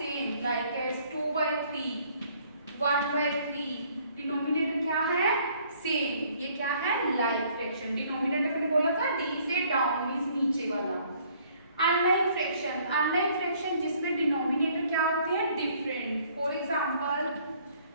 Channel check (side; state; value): both; inverted; correlation -0.61